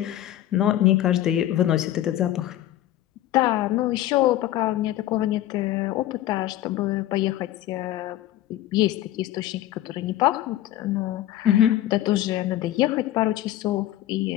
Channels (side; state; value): right; quieter; 13.6 dB